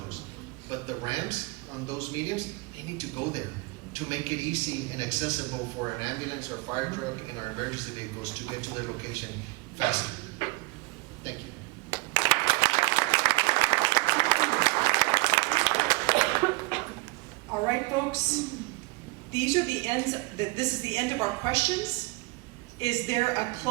But the ramps on those mediums, they need to go there to make it easy and accessible for an ambulance or fire truck and our emergency vehicles to get to their location faster. Thank you. All right, folks. These are the ends. This is the end of our questions. Is there a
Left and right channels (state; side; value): quieter; left; 25.3 dB